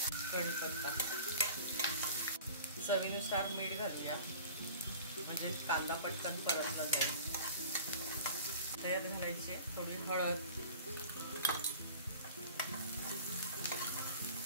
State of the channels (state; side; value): inverted; both; correlation -0.41